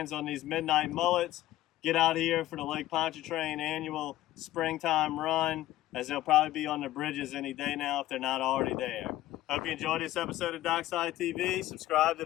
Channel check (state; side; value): quieter; right; 15.1 dB